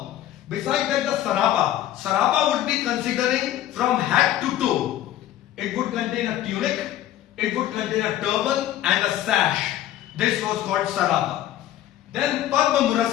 Besides that, the sarapa. Sarapa would be considering from head to toe. It would contain a tunic, it would contain a turban and a sash. This was called sarapa. Then Padma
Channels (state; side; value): quieter; right; 12.8 dB